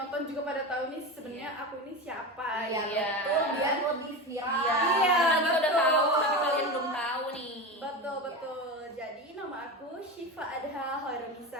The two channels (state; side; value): normal; both; correlation 0.23